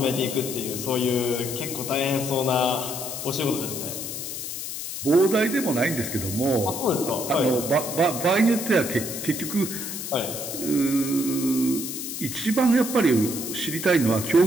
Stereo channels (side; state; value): left; noise; hiss, 6 dB below the sound